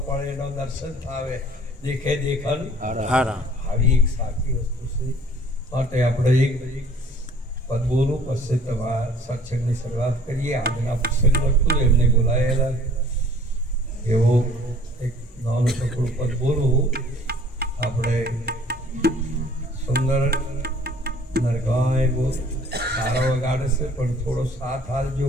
પળ એનો દર્શન થાવે, દેખે દેખન આવી એક સાચી વસ્તુ છે. માટે આપણે એક પદ બોલું પછી તમારા સત્સંગની શરૂઆત કરીએ. આજના પ્રસંગ હતું એમને બોલાયેલા એવો એક નાનું ટુકડું પદ બોલું. આપણે સુંદર નરગાય બહુ સારા વગાડે છે પણ થોડો સાથ હાલજો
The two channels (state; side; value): normal; both; correlation 0.54